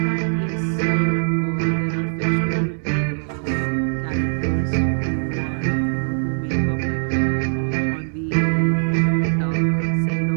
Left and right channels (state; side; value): silent; left; digital silence